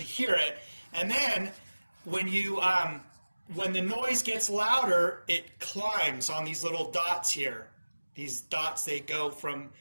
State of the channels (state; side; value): inverted; both; correlation -1.00